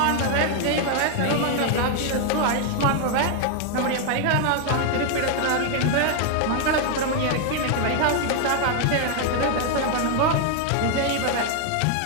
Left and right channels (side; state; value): both; different; correlation 0.00